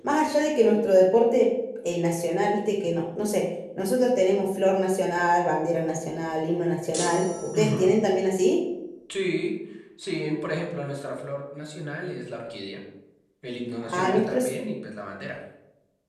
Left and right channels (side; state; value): both; identical; correlation 1.00